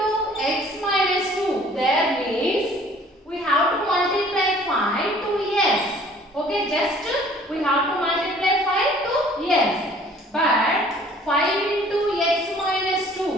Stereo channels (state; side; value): normal; both; correlation 0.54